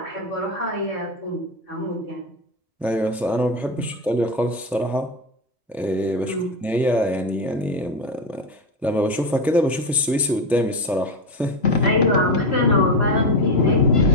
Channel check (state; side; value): normal; both; correlation 0.13